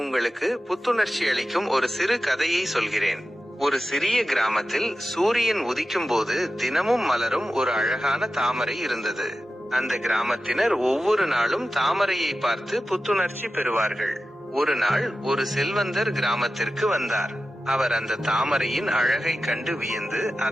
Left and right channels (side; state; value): both; normal; correlation 0.93